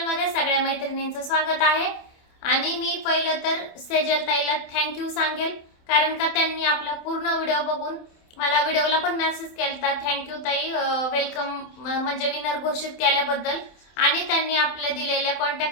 मध्ये सगळ्या मैत्रिणींचं स्वागत आहे। आणि मी पहिलं तर सेजल ताईला थँक्यू सांगेल, कारण का त्यांनी आपला पूर्ण व्हिडिओ बघून मला व्हिडिओला पण मेसेज केलता, थँक्यू ताई, वेलकम म्हणजे विनर घोषित केल्याबद्दल। आणि त्यांनी आपल्या दिलेल्या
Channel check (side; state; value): right; late; 27 ms